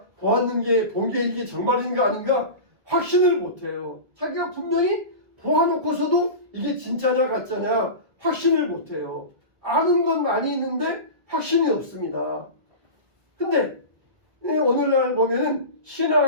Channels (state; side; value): late; left; 1.7 ms